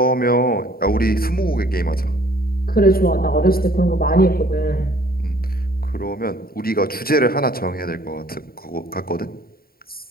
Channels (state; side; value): late; right; 0.43 ms